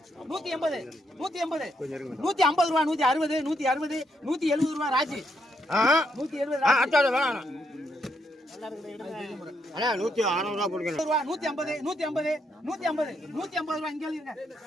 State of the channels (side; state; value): both; normal; correlation 0.77